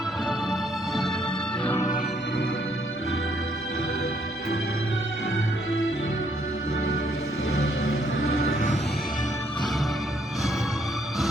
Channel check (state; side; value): normal; both; correlation 0.70